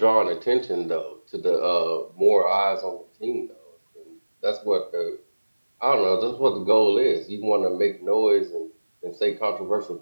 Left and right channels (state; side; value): inverted; both; correlation -1.00